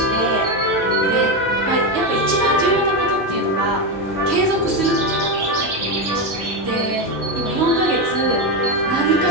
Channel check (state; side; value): normal; both; correlation 0.11